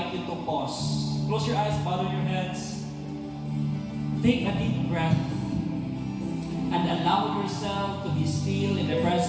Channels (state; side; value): identical; both; correlation 1.00